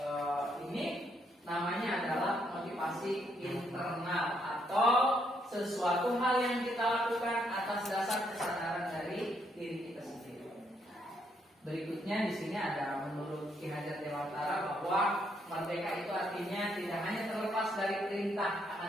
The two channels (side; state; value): both; normal; correlation 0.74